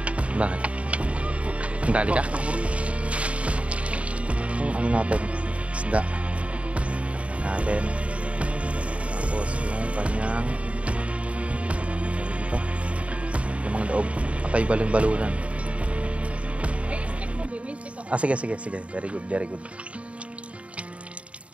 Bakit? Dali ka? Yung ano natin, isda. Natin. Tapos yung kanyang dito. Yung mga daog. Patay balon-balunan. May stick mo, Bi. May stick ako. Ah, sige, sige, sige. Very good, very good.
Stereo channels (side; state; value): left; late; 0.064 ms